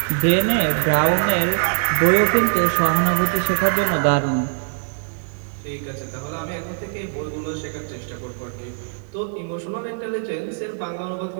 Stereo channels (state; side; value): silent; left; digital silence